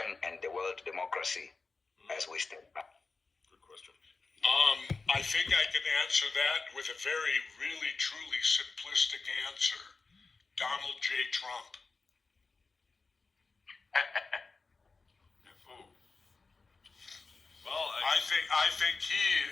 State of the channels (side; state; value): right; quieter; 4.1 dB